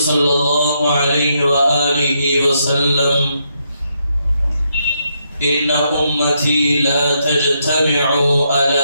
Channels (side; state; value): both; inverted; correlation -0.78